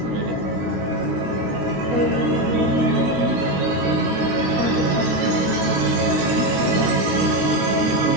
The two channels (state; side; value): late; left; 16 ms